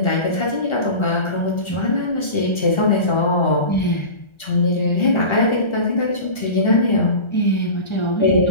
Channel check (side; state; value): right; late; 1.3 ms